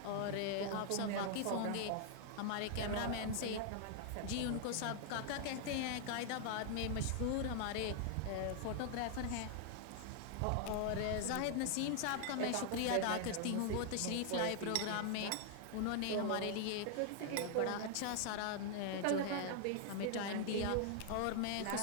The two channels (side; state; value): both; different; correlation 0.00